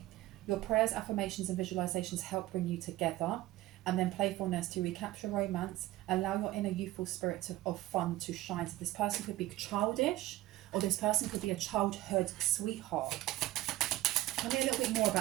Your prayers, affirmations, and visualizations help bring you together. And then playfulness, to recapture romance, allow your inner youthful spirit of fun to shine. So this person could be childish, or this person could be a childhood sweetheart. Tell me a little bit more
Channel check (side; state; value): left; quieter; 16.4 dB